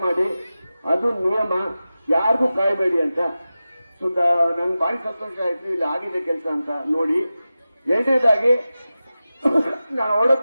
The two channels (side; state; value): both; inverted; correlation -0.95